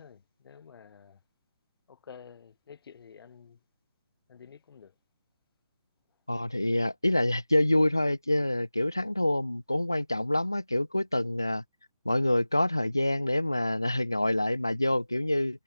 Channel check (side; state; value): both; inverted; correlation -0.98